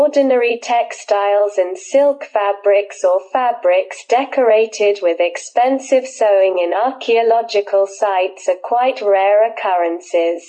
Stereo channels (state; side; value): identical; both; correlation 1.00